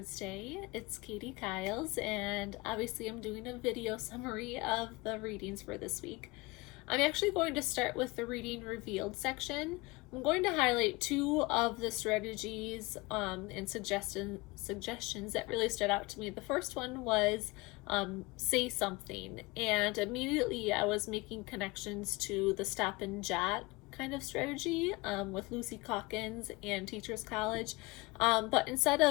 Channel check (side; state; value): right; quieter; 23.9 dB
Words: It's Katie Kiles, and obviously I'm doing a video summary of the readings for this week. I'm actually going to start with the reading revealed section. I'm going to highlight two of the strategies and suggestions that really stood out to me. The first one was say something, and immediately I was making connections to the stop and jot kind of strategy with Lucy Calkins and Teachers College. But instead